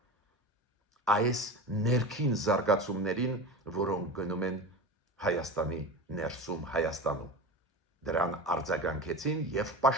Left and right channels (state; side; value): normal; both; correlation 0.29